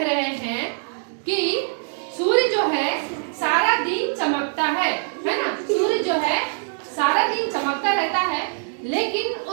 रहे हैं कि सूर्य जो है सारा दिन चमकता है ना। सूर्य जो है सारा दिन चमकता रहता है, लेकिन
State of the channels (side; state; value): left; silent; 63 dB below the other